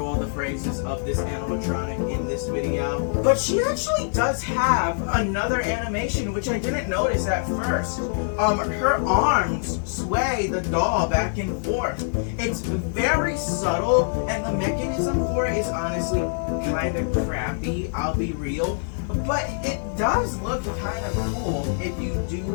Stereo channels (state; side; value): silent; right; digital silence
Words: all the phrases of this animatronic in this video. But she actually does have another animation, which I didn't notice at first. Her arms sway the doll back and forth. It's very subtle, and the mechanism for it is honestly kind of crappy, I'll be real. But it does look kind of cool if you